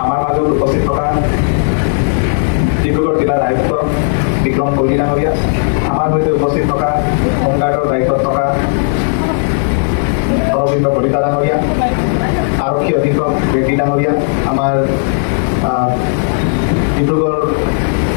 আমাৰ মাজত উপস্থিত থকা ডিব্ৰুগড় জিলাৰ আয়ুক্ত বিক্ৰম কৈলী ডাঙৰীয়া, আমাৰ সৈতে উপস্থিত থকা হোমগাৰ্ডৰ দায়িত্বত থকা অৰবিন্দ কলিতা ডাঙৰীয়া, আৰক্ষী অধীক্ষক ৰেড্ডি ডাঙৰীয়া, আমাৰ ডিব্ৰুগড়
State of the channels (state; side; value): silent; right; digital silence